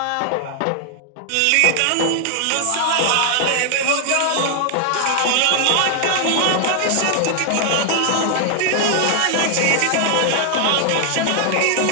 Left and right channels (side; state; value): both; different; correlation 0.00